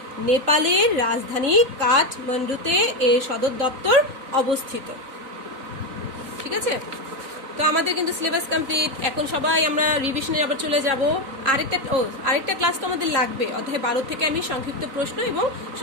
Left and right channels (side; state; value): left; late; 3.9 ms